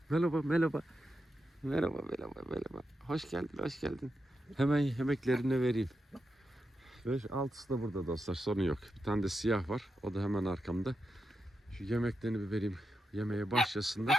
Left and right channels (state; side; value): normal; both; correlation 0.87